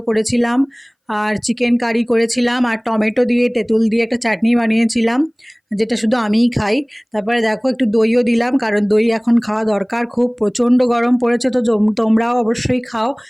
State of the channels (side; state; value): both; identical; correlation 1.00